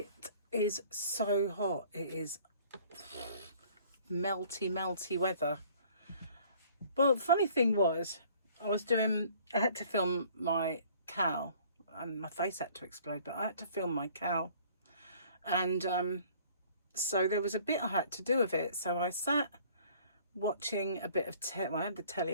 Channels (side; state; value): both; inverted; correlation -0.55